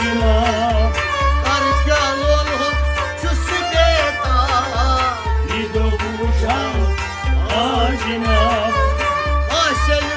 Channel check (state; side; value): identical; both; correlation 1.00